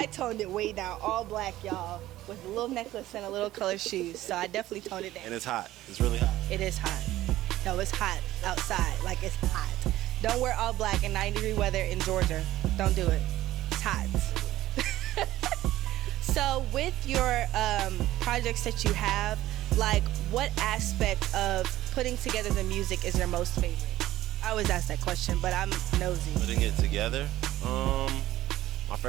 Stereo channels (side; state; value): left; quieter; 15.3 dB